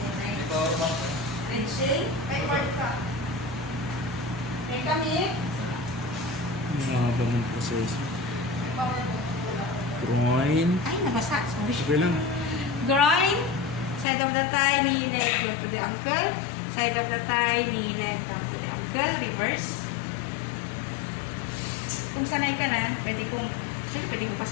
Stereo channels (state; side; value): drops out; right; at 14.1 s